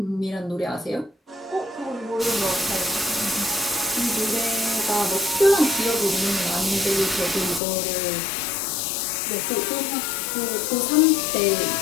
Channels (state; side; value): drops out; right; at 7.6 s